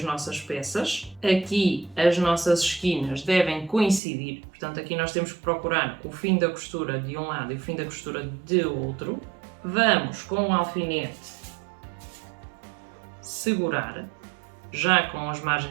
nossas peças. Aqui as nossas esquinas devem coincidir. Portanto, aqui nós temos que procurar o fim da costura de um lado e o fim da costura de outro. Vamos com o alfinete segurar, já com as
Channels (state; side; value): drops out; left; at 4.0 s